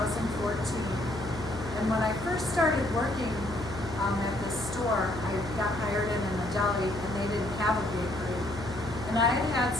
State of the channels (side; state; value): left; noise; hum, 11 dB below the sound